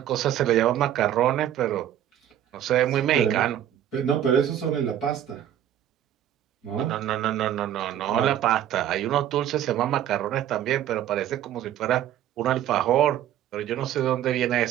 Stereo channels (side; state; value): left; quieter; 11.2 dB